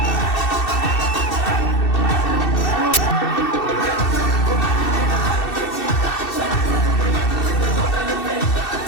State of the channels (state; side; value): late; right; 2.7 ms